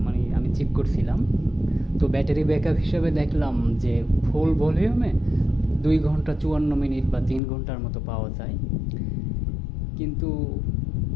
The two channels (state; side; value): drops out; right; at 7.4 s